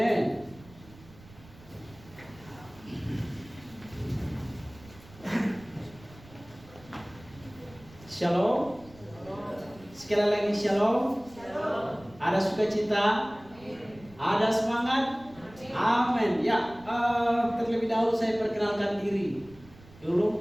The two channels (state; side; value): noise; right; rumble, 22 dB below the sound